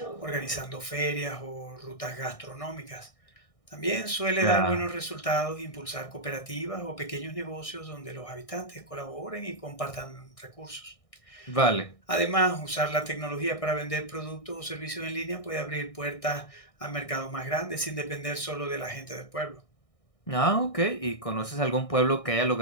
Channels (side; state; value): right; late; 1.6 ms